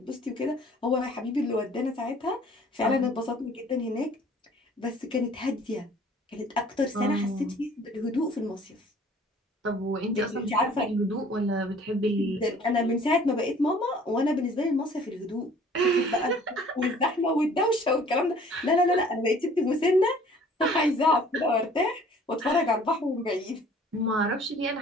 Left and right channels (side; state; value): both; normal; correlation 0.53